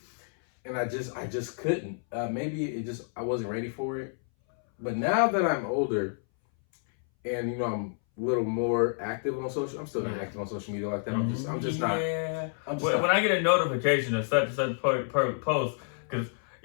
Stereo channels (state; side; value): silent; right; 58 dB below the other